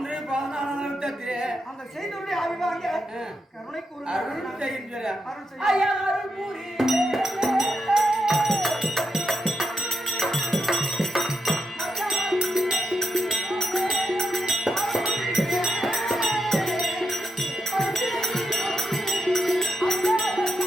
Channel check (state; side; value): normal; both; correlation 0.83